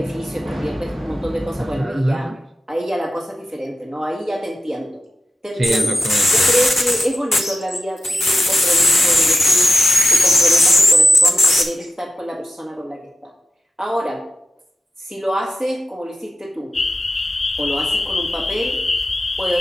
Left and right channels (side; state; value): both; normal; correlation 0.92